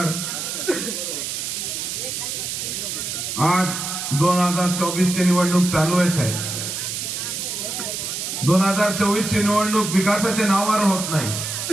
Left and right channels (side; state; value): right; noise; hiss, 4 dB below the sound